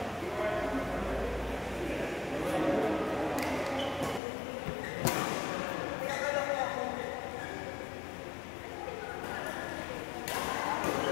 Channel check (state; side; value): drops out; right; at 4.2 s